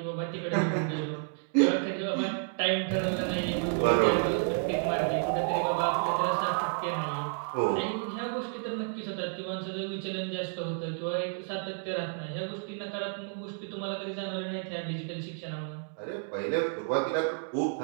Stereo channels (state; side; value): silent; left; 57 dB below the other